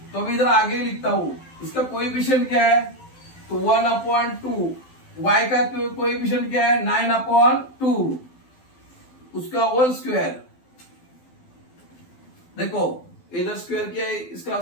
तो अभी इधर आगे लिखता हूं, इसका कोएफिशिएंट क्या है, तो 1/2. y का कोएफिशिएंट क्या है, 9/2, उसका होल स्क्वायर. देखो इधर स्क्वायर किया है, इसका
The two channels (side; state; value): right; late; 12 ms